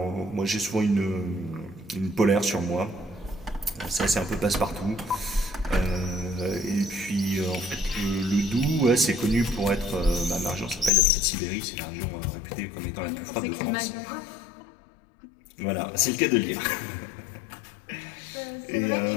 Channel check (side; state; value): right; drops out; at 10.9 s